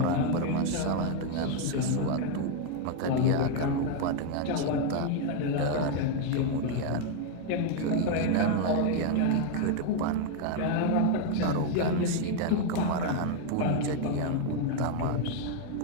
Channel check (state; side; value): different; both; correlation 0.00